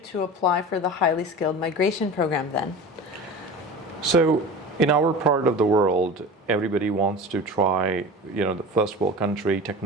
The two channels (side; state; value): both; normal; correlation 0.34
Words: apply for the highly skilled migration program then? So in our part of the world, everybody wants to try, the first world country